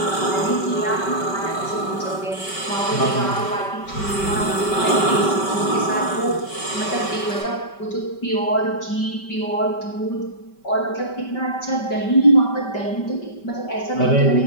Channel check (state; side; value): late; right; 5.2 ms